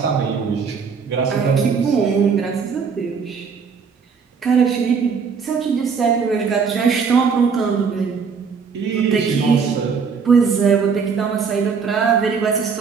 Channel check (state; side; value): quieter; left; 5.8 dB